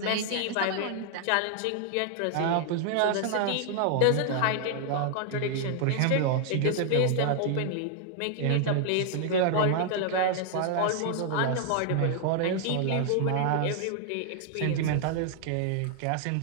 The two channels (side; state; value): both; different; correlation 0.00